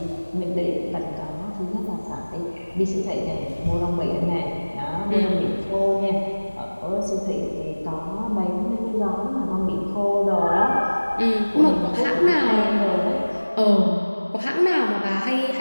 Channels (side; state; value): both; inverted; correlation -1.00